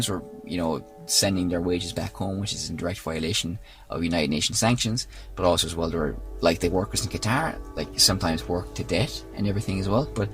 who are sending their wages back home, which is in direct violation of United Nations sanctions. But also as well, there are like the workers in Qatar, like sometimes work to death and everything as well. But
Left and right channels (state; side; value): identical; both; correlation 1.00